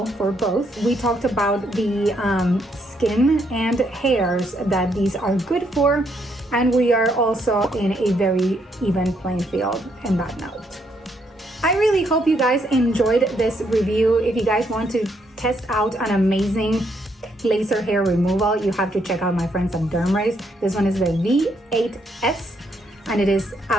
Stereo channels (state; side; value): normal; both; correlation 0.74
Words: for both. We talked about the skin and hairs that these are good for, and we are also in a very even playing field in that note. I really hope you guys enjoyed this review. If you guys want to test out an amazing laser hair removal, you have to check out my friends at DermRays. This one is the V8S, and it is